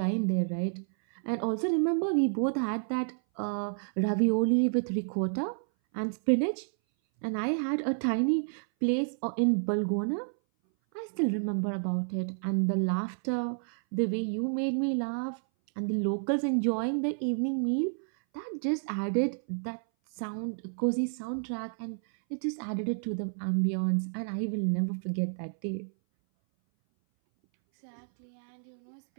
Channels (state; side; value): silent; left; 58 dB below the other